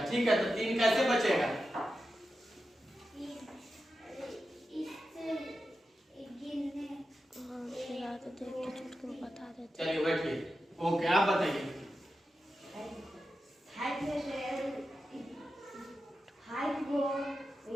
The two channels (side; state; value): both; normal; correlation 0.91